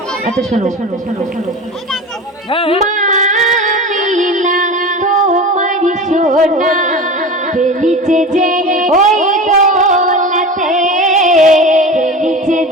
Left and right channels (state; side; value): normal; both; correlation 0.31